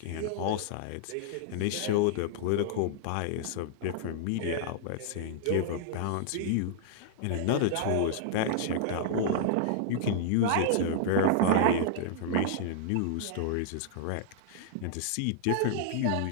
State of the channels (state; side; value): different; both; correlation -0.01